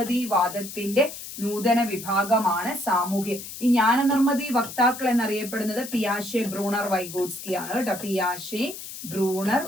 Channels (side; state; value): left; noise; hiss, 11 dB below the sound